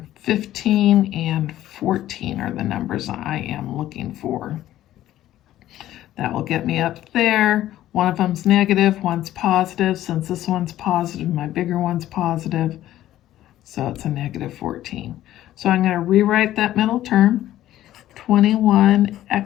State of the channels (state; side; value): quieter; right; 13.5 dB